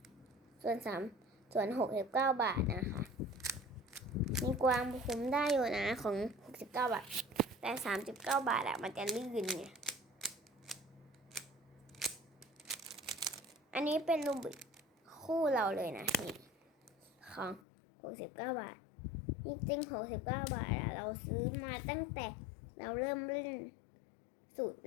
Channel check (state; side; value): drops out; right; at 17.6 s